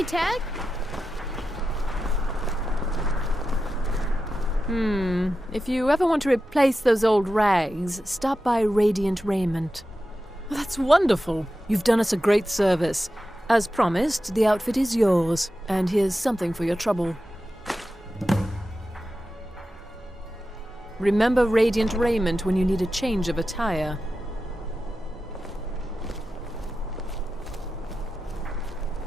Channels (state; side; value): normal; both; correlation 0.91